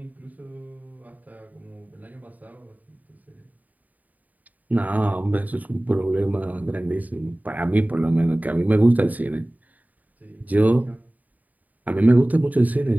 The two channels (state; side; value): late; left; 0.077 ms